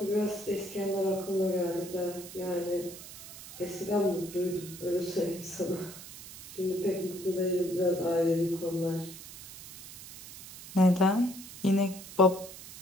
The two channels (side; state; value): right; noise; hiss, 15 dB below the sound